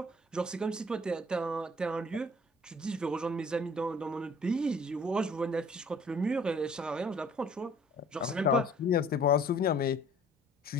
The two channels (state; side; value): normal; both; correlation 0.54